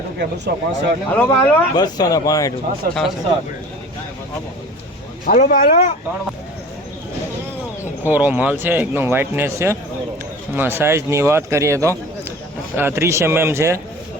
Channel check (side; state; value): both; normal; correlation 0.41